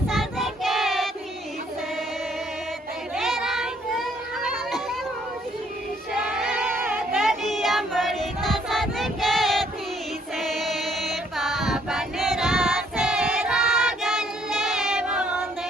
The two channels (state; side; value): normal; both; correlation 0.66